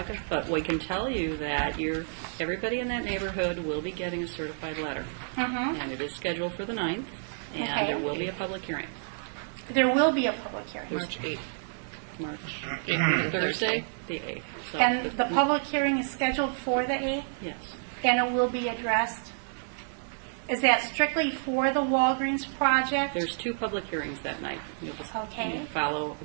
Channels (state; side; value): silent; left; 58 dB below the other